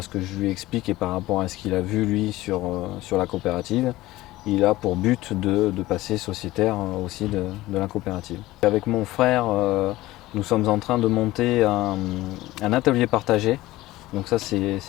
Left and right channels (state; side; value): quieter; right; 17.5 dB